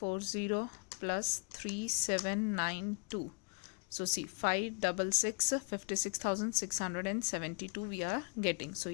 plus 3792. So see, 56,672 we are getting. So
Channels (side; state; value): right; quieter; 36.8 dB